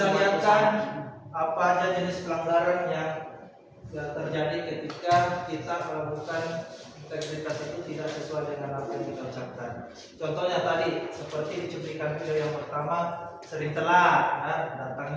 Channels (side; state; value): both; identical; correlation 1.00